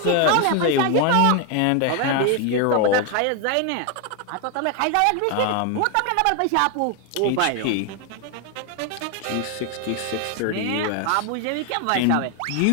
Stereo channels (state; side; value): different; both; correlation 0.01